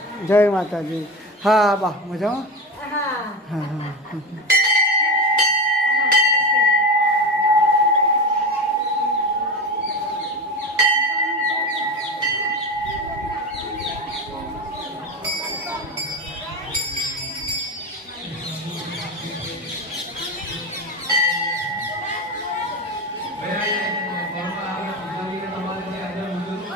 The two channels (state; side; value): normal; both; correlation 0.22